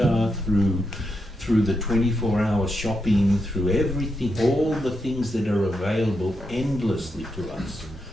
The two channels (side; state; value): both; normal; correlation 0.84